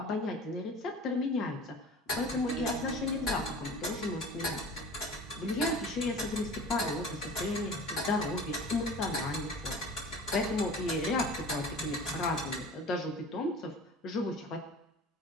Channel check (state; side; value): normal; both; correlation 0.40